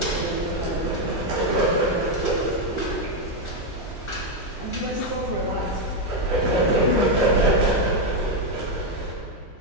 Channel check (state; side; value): normal; both; correlation 0.04